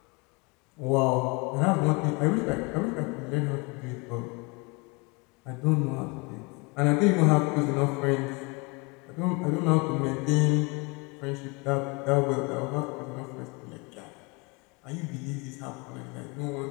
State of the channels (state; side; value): quieter; right; 28.8 dB